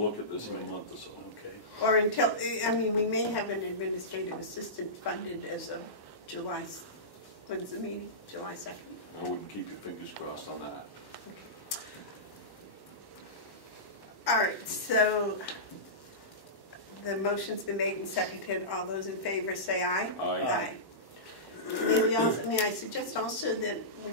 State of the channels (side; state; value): right; late; 1.1 ms